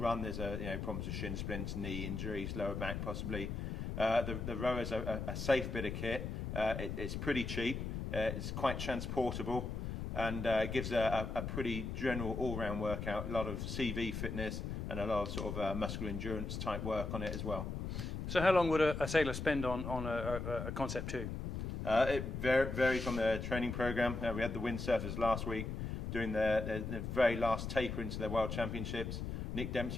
There's problems with shin splints, knee injuries, lower back possibly. The rowers are a safe bit of kit. It's pretty cheap. It's quite transportable, and gives a pretty general all-round workout. A lot of CV fitness and a lot of sort of muscular endurance type work on it as well. So how long would a sailor spend on a Concept 2? It varies on the training program. We had the windsurfers last week doing their very last taper into their World Championships. Nick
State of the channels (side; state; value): left; noise; rumble, 4 dB below the sound